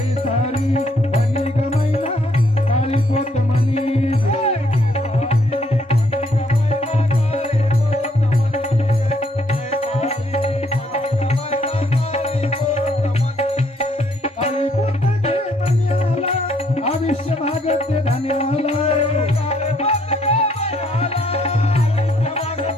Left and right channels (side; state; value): both; normal; correlation 0.68